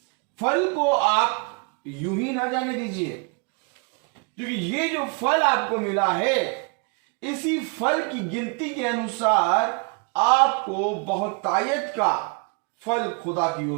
फल को आप यूं ही ना जाने दीजिए, क्योंकि ये जो फल आपको मिला है, इसी फल की गिनती के अनुसार आपको बहुतायत का फल खुदा की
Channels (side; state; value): left; quieter; 35.3 dB